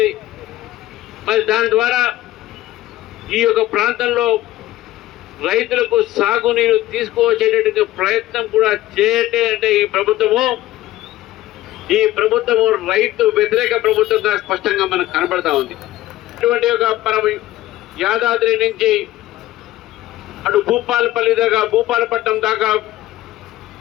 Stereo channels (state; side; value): quieter; right; 15.6 dB